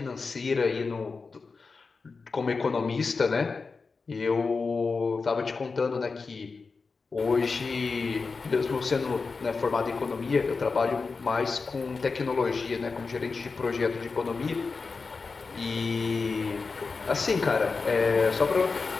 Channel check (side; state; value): right; quieter; 4.5 dB